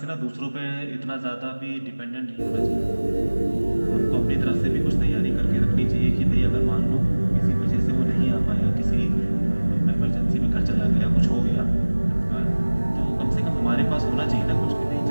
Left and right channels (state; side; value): inverted; both; correlation -1.00